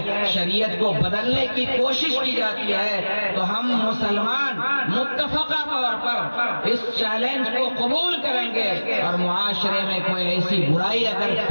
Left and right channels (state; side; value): inverted; both; correlation -1.00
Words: شریعت کو بدلنے کی کوشش کی جاتی ہے، تو ہم مسلمان متفقہ طور پر اس چیلنج کو قبول کریں گے، اور معاشرے میں کوئی ایسی برائی اگر